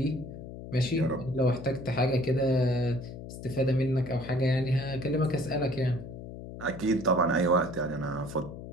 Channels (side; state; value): left; noise; hum, 11 dB below the sound